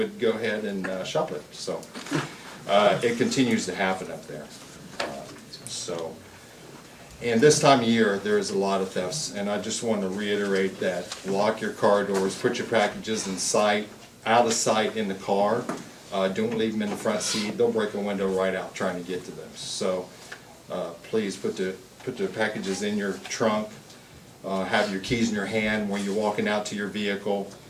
go ahead and shop it. So it continues to happen up there. And this time of year, there's a lot of thefts, and I just want to reiterate that lock your car doors, put your packages in sight, out of sight in the car. Don't leave them in the front seat. They'll break a window right out trying to get to them. So please put the packages in your trunk. Have your keys in your hand when you're walking out to your vehicle.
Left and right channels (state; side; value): identical; both; correlation 1.00